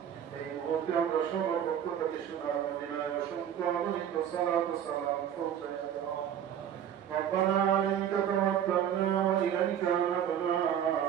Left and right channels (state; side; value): quieter; left; 9.6 dB